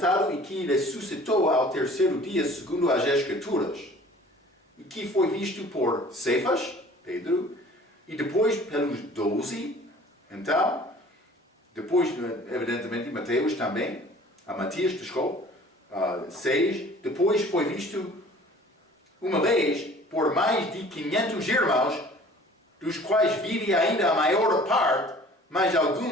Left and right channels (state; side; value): normal; both; correlation 0.49